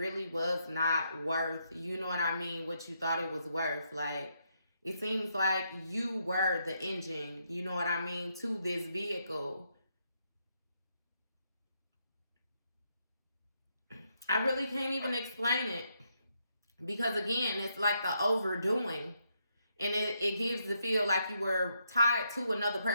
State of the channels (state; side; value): inverted; both; correlation -0.78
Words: was not worth, you know what I mean, what you thought it was worth. Like it seems like you were the engine, you know what I mean, to this vehicle. I really can't even explain it, because again, it's like the overdoing, and it gives the feel like you were tied to another